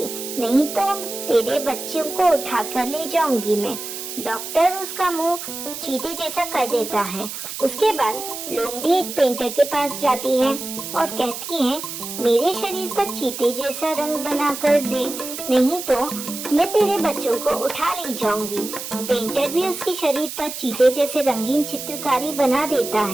नहीं तो तेरे बच्चों को उठा कर ले जाऊंगी मैं। डॉक्टर उसका मुंह चीते जैसा कर देता है। उसके बाद लोमड़ी एक पेंटर के पास जाती है और कहती है, मेरे शरीर पर चीते जैसा रंग बना कर दे, नहीं तो मैं तेरे बच्चों को उठा ले जाऊंगी। पेंटर भी उसके शरीर पर चीते जैसे रंगीन चित्रकारी बना देता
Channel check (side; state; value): right; noise; hiss, 8 dB below the sound